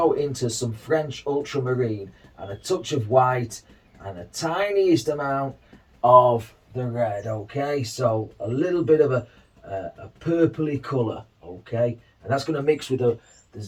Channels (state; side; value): identical; both; correlation 1.00